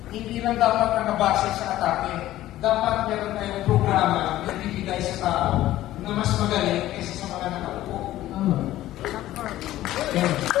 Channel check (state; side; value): quieter; right; 14.6 dB